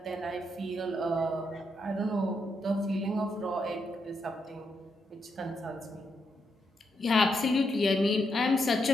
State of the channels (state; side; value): normal; both; correlation 0.80